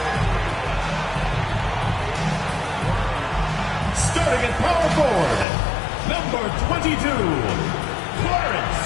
Starting at power forward, number 22, Clarence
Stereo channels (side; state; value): right; drops out; at 5.5 s